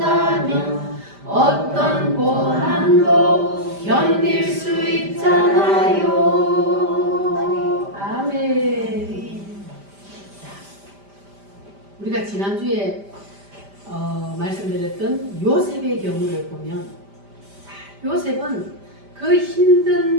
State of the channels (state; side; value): late; left; 5.0 ms